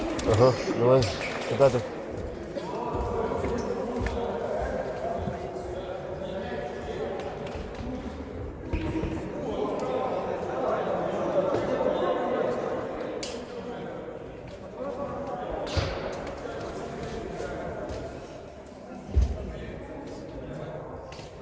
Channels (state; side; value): identical; both; correlation 1.00